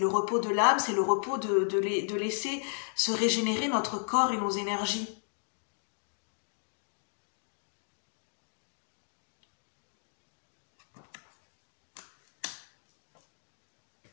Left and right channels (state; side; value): silent; right; 55 dB below the other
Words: repos de l'âme, c'est le repos de laisser se régénérer notre corps et nos énergies.